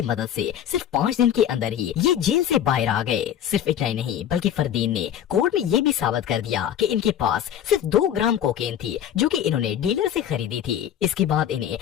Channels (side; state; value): right; quieter; 10.0 dB